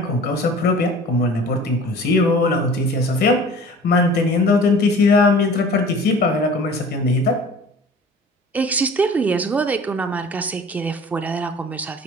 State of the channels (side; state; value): both; normal; correlation 0.44